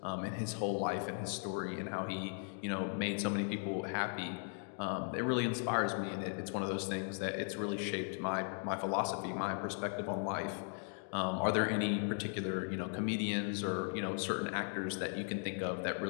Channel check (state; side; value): silent; right; 53 dB below the other